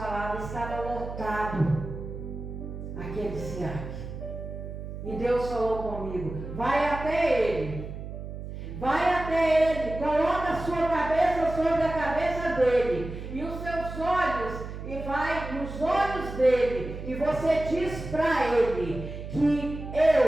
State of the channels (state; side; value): noise; right; hum, 9 dB below the sound